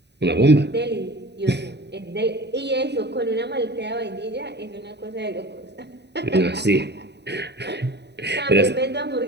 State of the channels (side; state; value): left; late; 0.50 ms